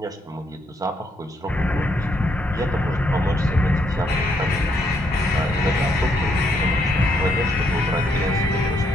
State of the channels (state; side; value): normal; both; correlation 0.74